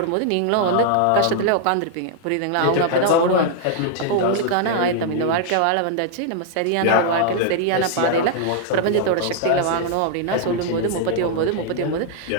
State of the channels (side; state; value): both; different; correlation -0.01